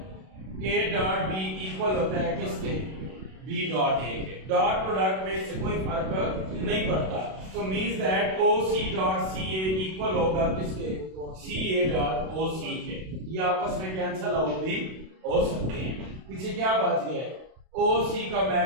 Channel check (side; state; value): left; late; 32 ms